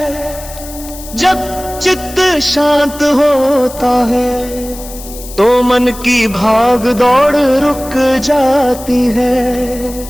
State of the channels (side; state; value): left; noise; hiss, 15 dB below the sound